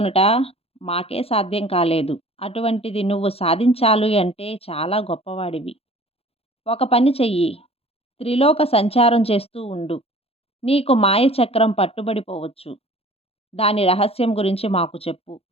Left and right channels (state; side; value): late; right; 0.29 ms